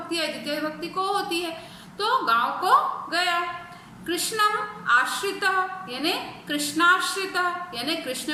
है द्वितीय विभक्ति को होती है, तो गांव को गया। कृष्णम आश्रितः, यानी कृष्णाश्रित, यानी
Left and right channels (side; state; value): both; identical; correlation 1.00